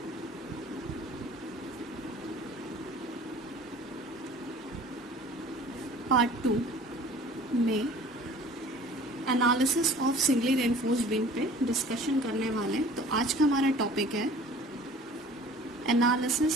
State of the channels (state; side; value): normal; both; correlation 0.47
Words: part 2 में analysis of singly reinforced beam पे discussion करने वाले हैं। तो आज का हमारा टॉपिक है